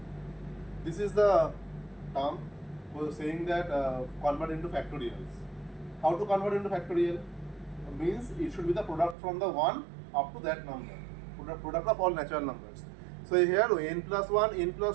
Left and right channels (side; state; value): left; drops out; at 9.2 s